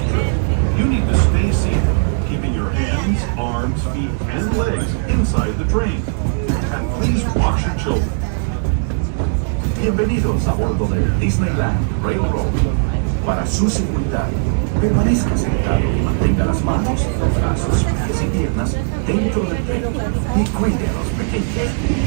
trip, you need to stay seated, keeping your hands, arms, feet, and legs inside the train. And please watch your children. Bienvenidos a bordo del Disneyland Railroad. Para su seguridad, permanezca sentado y mantenga las manos, brazos, pies y piernas dentro del tren y cuide a los pequeños.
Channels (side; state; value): left; silent; digital silence